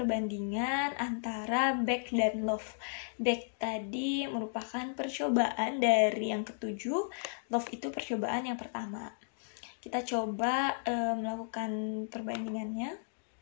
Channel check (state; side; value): silent; right; digital silence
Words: antara back dan love. Back tadi merupakan percobaan dari yang ke-7, love itu percobaan yang pertama. Kita coba melakukan perbandingannya.